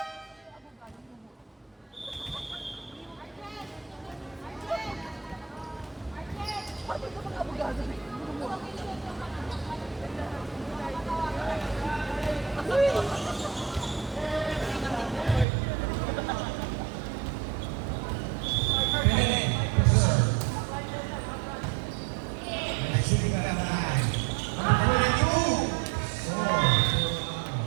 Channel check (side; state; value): left; drops out; at 15.5 s